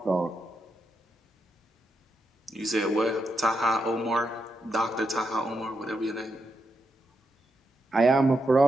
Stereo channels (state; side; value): normal; both; correlation 0.83